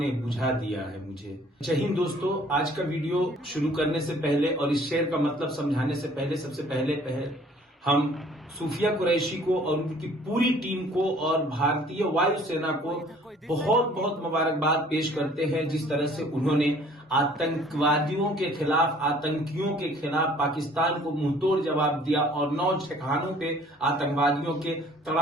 बुझा दिया है मुझे। जय हिंद दोस्तों, आज का वीडियो शुरू करने से पहले और इस शेर का मतलब समझाने से पहले सबसे पहले हम सूफिया कुरैशी को और उनकी पूरी टीम को और भारतीय वायुसेना को बहुत बहुत मुबारकबाद पेश करते हैं। जिस तरह से उन्होंने आतंकवादियों के खिलाफ, आतंकियों के खिलाफ पाकिस्तान को मुंहतोड़ जवाब दिया और 9 ठिकानों पे आतंकवादियों के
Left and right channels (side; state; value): both; normal; correlation 0.55